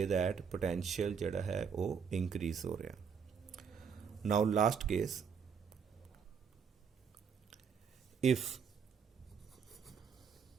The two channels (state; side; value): quieter; left; 6.7 dB